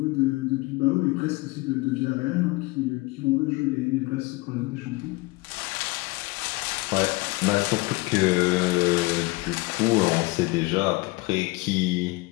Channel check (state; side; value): quieter; right; 23.1 dB